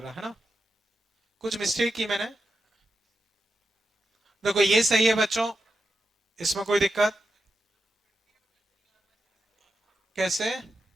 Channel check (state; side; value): normal; both; correlation 0.88